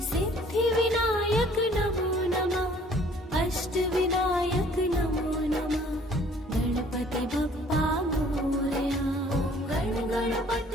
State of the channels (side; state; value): both; normal; correlation 0.56